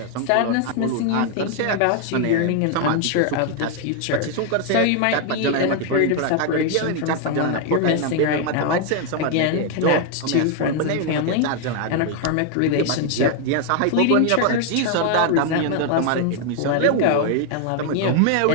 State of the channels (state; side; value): different; both; correlation 0.01